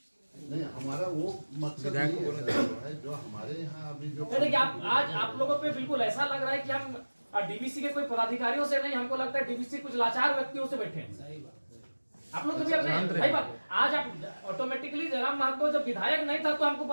हमारा वो मकसद नहीं है जो हमारे यहाँ अभी जो देखिए, आज आप लोगों पे बिल्कुल ऐसा लग रहा है कि हम डीवीसी के कोई पदाधिकारियों से नहीं, हमको लगता है डीवीसी कुछ लाचार व्यक्तियों से बैठे हैं। आप लोग कभी अपने भाई बात, आज आप ऑटोमेटिकली जयराम महतो जब विधायक नहीं था तो हमको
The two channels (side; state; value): both; inverted; correlation -1.00